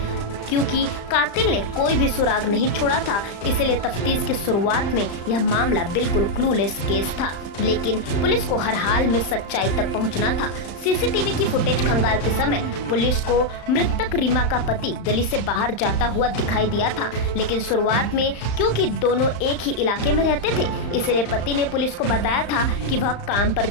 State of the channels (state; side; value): late; right; 35 ms